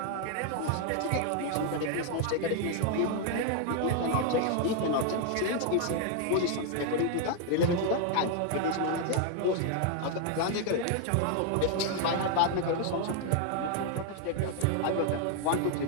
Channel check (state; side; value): different; both; correlation 0.00